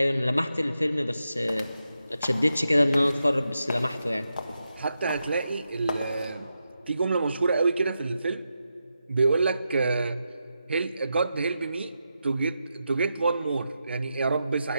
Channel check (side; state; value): both; inverted; correlation -0.87